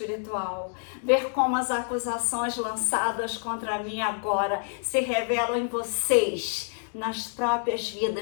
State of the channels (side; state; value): right; silent; digital silence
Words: Ver como as acusações lançadas contra mim agora se revelam em vocês, nas próprias